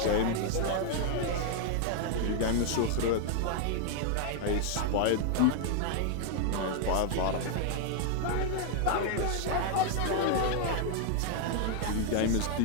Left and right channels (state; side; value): different; both; correlation 0.00